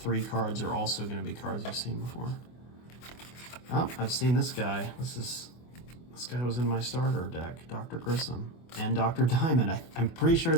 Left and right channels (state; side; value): late; right; 24 ms